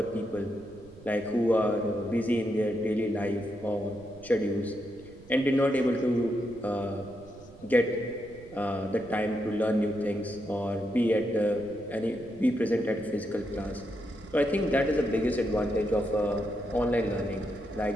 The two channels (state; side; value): noise; right; rumble, 21 dB below the sound